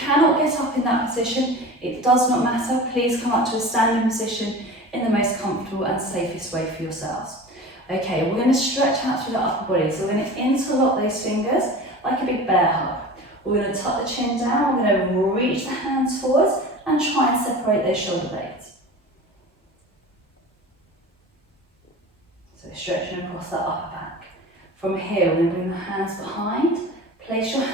get up in that position, it does not matter. Please come up to a standing position in the most comfortable and safest way for yourselves. Okay, we're going to stretch out through the upper body. So we're going to interlock those fingers like a big bear hug. We're going to tuck the chin down. We're going to reach the hands forwards and try and separate those shoulder blades. So stretching across that upper back. From here, we're going to bring the hands behind. Place your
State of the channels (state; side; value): normal; both; correlation 0.36